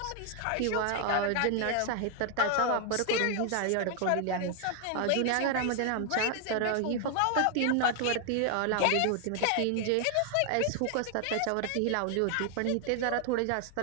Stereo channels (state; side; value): different; both; correlation 0.00